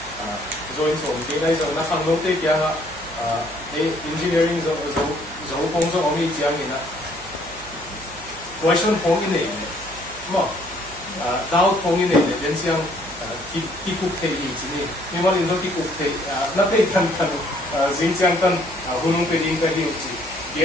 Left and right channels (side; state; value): right; noise; hum, 19 dB below the sound